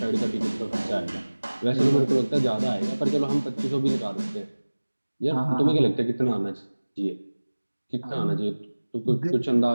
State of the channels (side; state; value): both; inverted; correlation -1.00